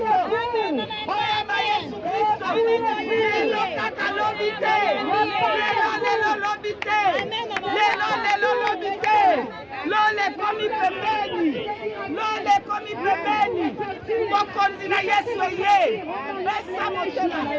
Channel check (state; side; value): identical; both; correlation 1.00